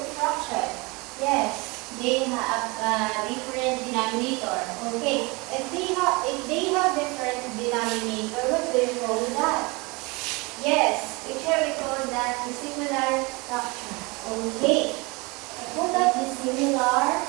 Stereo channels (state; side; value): quieter; left; 26.4 dB